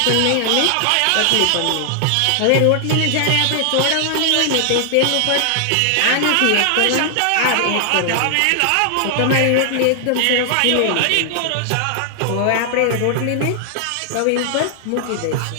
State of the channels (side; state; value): both; different; correlation 0.00